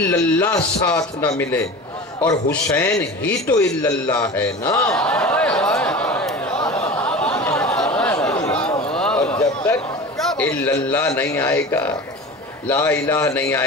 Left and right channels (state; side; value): normal; both; correlation 0.34